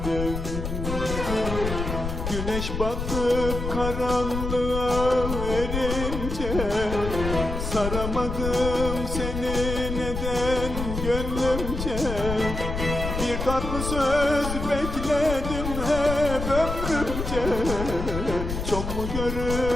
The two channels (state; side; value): noise; left; rumble, 4 dB below the sound